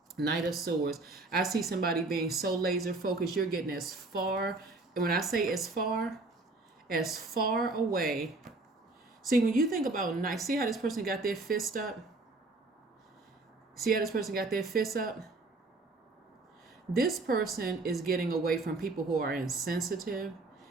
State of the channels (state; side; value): quieter; left; 3.3 dB